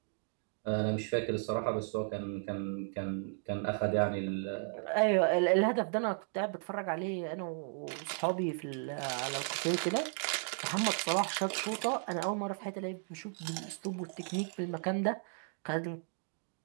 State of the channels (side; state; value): left; silent; 54 dB below the other